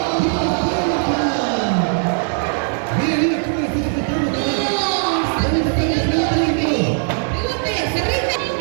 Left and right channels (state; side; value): silent; left; 61 dB below the other